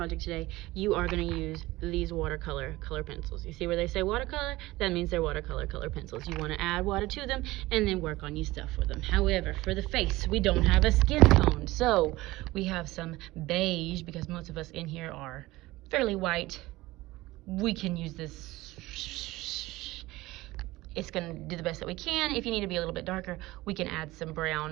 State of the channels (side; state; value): left; quieter; 18.9 dB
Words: today, you are going to use these watercolor color pencils. You see where they say watercolor? That means they're watercolor color pencils. You want to add water to them and then work on your stuff with them. However, for the face, we don't have a skin tone, so we have some beige, because most of us in here are fairly white. We can use this. It's going to do the best that we can. If you need to be a little bit darker, we can add some